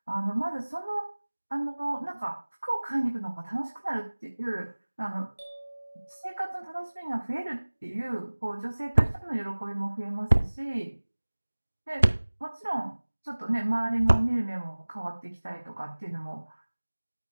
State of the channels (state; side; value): inverted; both; correlation -1.00